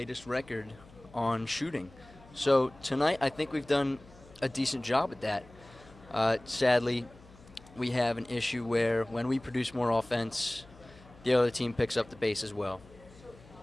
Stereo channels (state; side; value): noise; left; hum, 23 dB below the sound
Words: record on shooting. So tonight, I think we've done a decent job at that. Sadly, we have an issue where when we produce more offense, the other team picks up the pace as well.